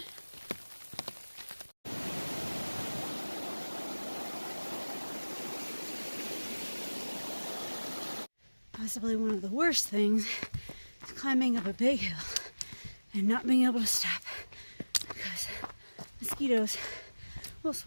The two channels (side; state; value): both; inverted; correlation -1.00